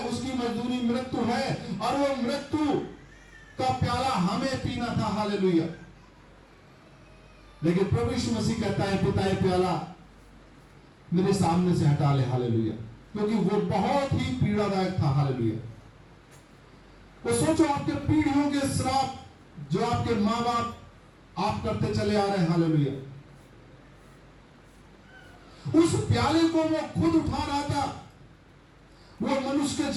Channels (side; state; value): both; identical; correlation 1.00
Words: उसकी मजदूरी मृत्यु है और वो मृत्यु का प्याला हमें पीना था। हालेलुया। लेकिन प्रभु यीशु मसीह कहता है, पिता ये प्याला मेरे सामने से हटा ले। हालेलुया। क्योंकि वो बहुत ही पीड़ादायक था। हालेलुया। वो सोचो, आपके पीढ़ियों के श्राप जो आपके मां बाप आप करते चले आ रहे हैं। हालेलुया। उस प्याले को वो खुद उठा रहा था। वो मनुष्य के